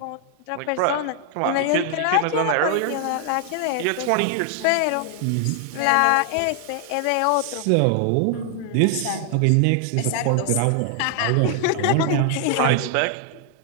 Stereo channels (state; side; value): different; both; correlation 0.00